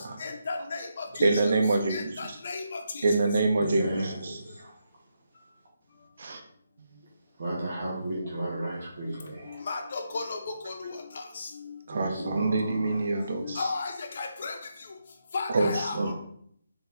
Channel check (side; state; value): both; inverted; correlation -0.83